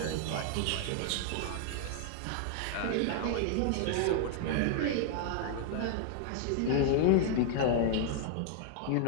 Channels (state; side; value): different; both; correlation -0.01